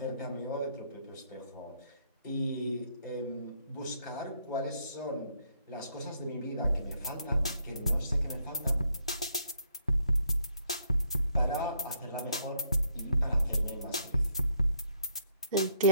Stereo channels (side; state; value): both; inverted; correlation -0.72